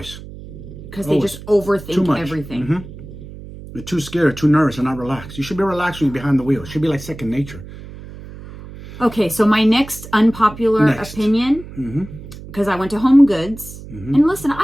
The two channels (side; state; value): right; noise; hum, 15 dB below the sound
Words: Because they just overthink everything. They're too scared, too nervous, and not relaxed. You should be relaxed when you're behind the wheel. It should be like second nature. Okay, so my next unpopular opinion, because I went to Home Goods, and listen,